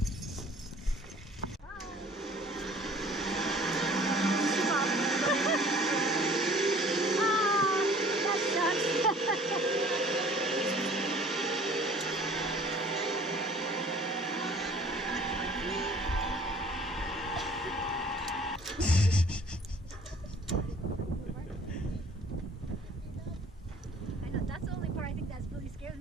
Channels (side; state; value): both; normal; correlation 0.52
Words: That's the only part I think that's really scares